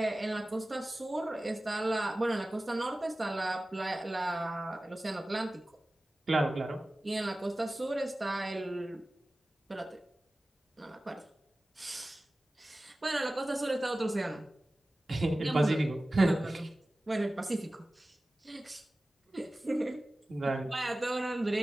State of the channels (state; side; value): normal; both; correlation 0.97